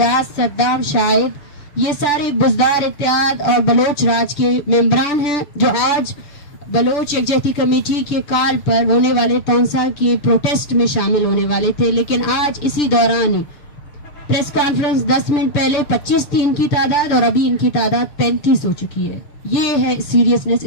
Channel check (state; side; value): late; right; 6.8 ms